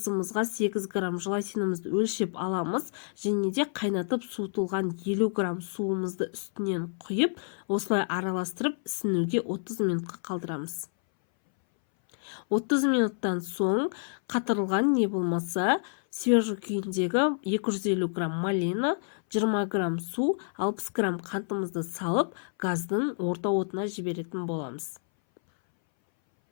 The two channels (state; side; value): silent; right; 59 dB below the other